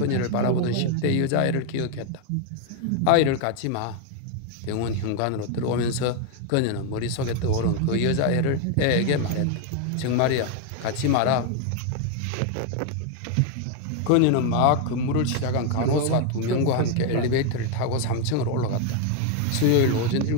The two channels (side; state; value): both; different; correlation 0.01